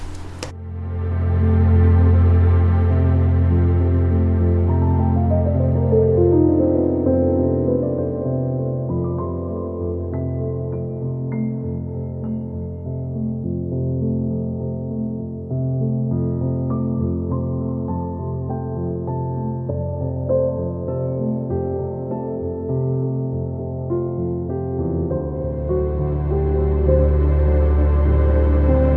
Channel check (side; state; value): both; identical; correlation 1.00